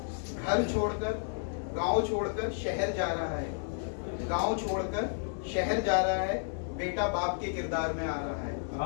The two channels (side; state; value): right; silent; 57 dB below the other